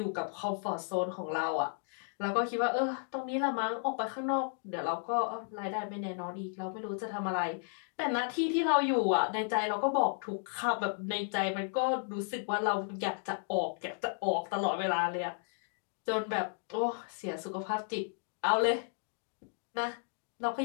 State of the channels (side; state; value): right; silent; 55 dB below the other